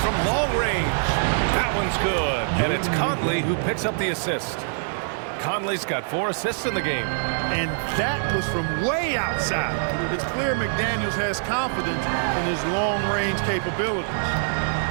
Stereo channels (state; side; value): silent; left; digital silence